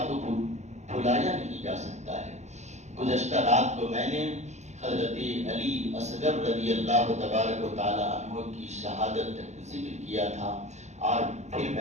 کو بھلایا نہیں جا سکتا ہے۔ گزشتہ رات کو میں نے حضرت علی اصغر رضی اللہ تبارک و تعالی عنہ کی شہادت ذکر کیا تھا، اور پھر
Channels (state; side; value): late; left; 0.33 ms